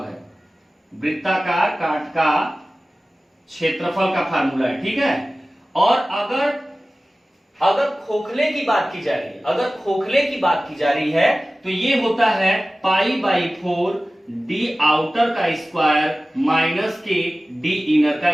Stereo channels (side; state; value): both; normal; correlation 0.96